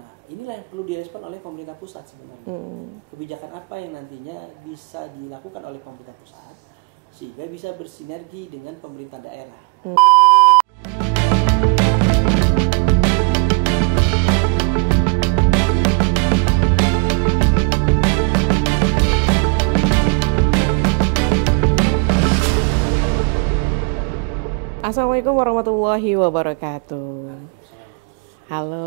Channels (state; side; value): quieter; left; 37.7 dB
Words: inilah yang perlu direspon oleh pemerintah pusat sebenarnya. Kebijakan apa yang nantinya bisa dilakukan oleh pemerintah pusat sehingga bisa bersinergi dengan pemerintah daerah. Assalamualaikum warahmatullahi wabarakatuh. Waalaikumsalam warahmatullahi wabarakatuh.